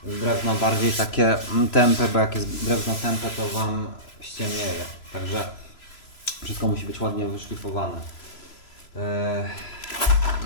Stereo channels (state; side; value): late; right; 3.0 ms